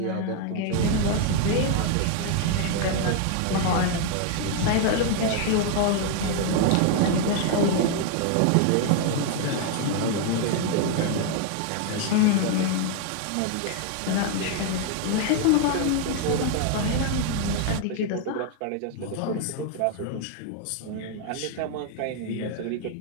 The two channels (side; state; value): both; different; correlation 0.00